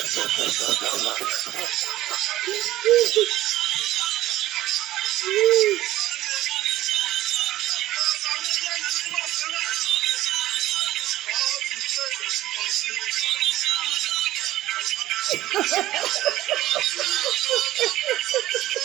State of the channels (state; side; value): quieter; left; 15.0 dB